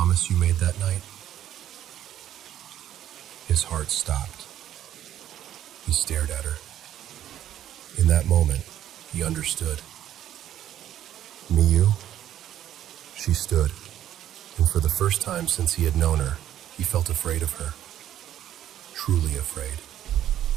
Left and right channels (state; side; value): quieter; left; 11.5 dB